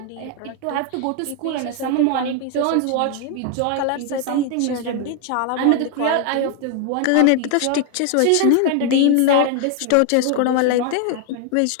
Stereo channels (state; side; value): different; both; correlation 0.00